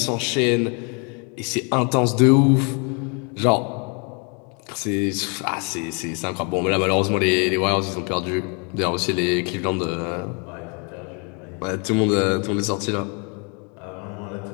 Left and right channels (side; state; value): right; quieter; 35.1 dB